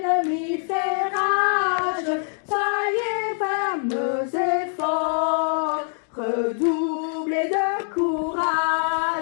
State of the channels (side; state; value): right; silent; 59 dB below the other